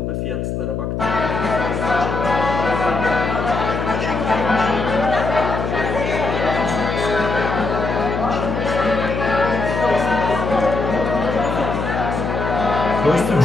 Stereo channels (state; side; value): noise; left; hum, 3 dB below the sound